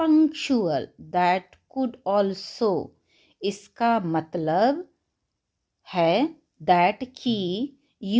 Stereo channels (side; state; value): both; identical; correlation 1.00